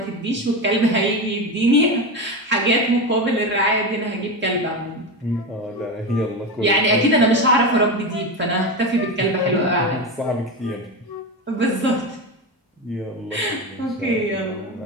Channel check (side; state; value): both; normal; correlation 0.19